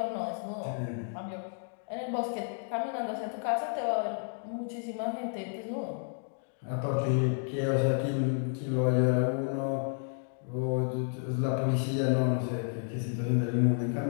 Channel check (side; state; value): right; silent; 57 dB below the other